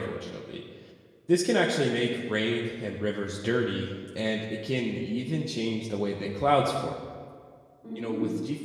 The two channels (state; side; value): identical; both; correlation 1.00